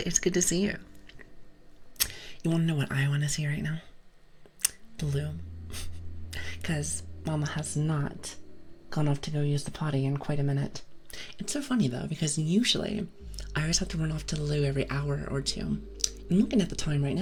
good to see you. You want to know what I want to see right now? Blue. Because Mama has not gone off to go use the potty in quite a minute. It's so funny, though, because usually I always have to run off to the loo every hour or two. I'm looking at the time right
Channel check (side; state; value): both; identical; correlation 1.00